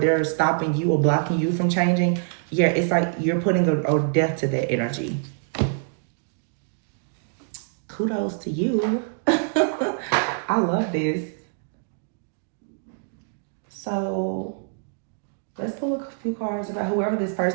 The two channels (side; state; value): left; silent; digital silence